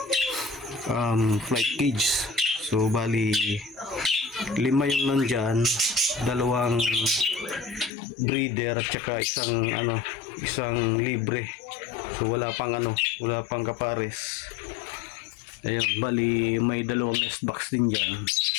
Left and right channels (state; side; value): drops out; right; at 7.9 s